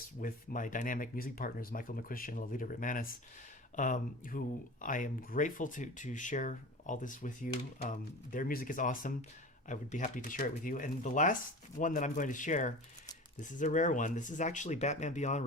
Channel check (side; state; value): both; normal; correlation 0.34